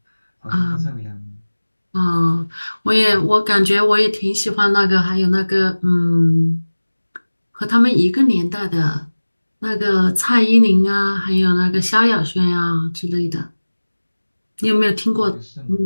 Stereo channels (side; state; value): both; inverted; correlation -1.00